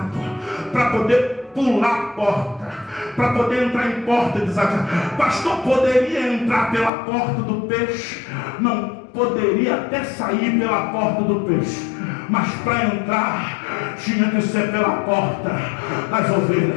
para poder pular a porta, para poder entrar em porta desafiada. Pastor, poderia entrar pela porta do peixe? Não, poderia até sair pela porta do peixe, mas para entrar tinha que ser pela porta das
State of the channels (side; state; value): right; drops out; at 6.9 s